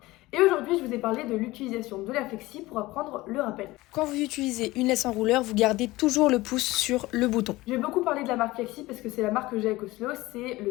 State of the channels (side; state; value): right; quieter; 19.3 dB